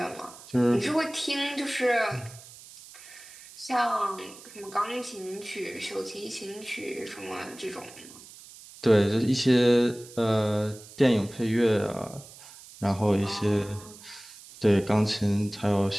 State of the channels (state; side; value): noise; right; hiss, 19 dB below the sound